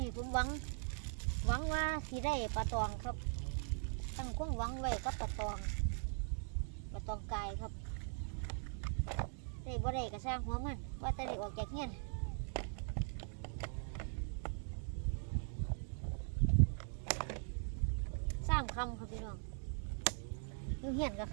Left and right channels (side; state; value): left; silent; 51 dB below the other